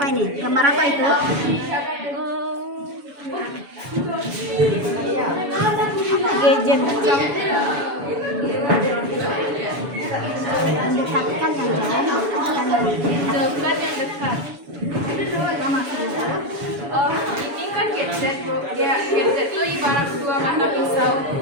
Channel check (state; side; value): late; left; 7.1 ms